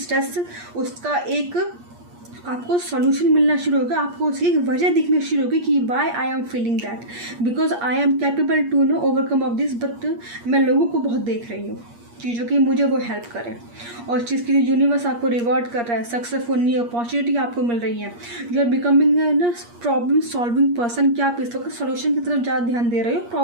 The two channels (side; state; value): left; late; 8.5 ms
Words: उसका एक आपको सॉल्यूशन मिलना शुरू होगा, आपको उसकी एक वजह दिखनी शुरू होगी कि why I am feeling that, because I am capable to no overcome of this, but मैं लोगों को बहुत देख रही हूँ चीज़ों की मुझे वो हेल्प करें, और चीज़ की यूनिवर्स आपको रिवॉर्ड कर रहा है, सक्सेसफुल नई अपॉर्चुनिटी आपको मिल रही है, यू आर बिकमिंग ना प्रॉब्लम सॉल्विंग पर्सन। क्या आप इस वक्त सोल्यूशन की तरफ ज़्यादा ध्यान दे रहे हो,